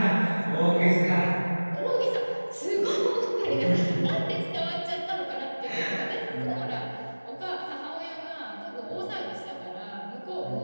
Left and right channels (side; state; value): both; inverted; correlation -1.00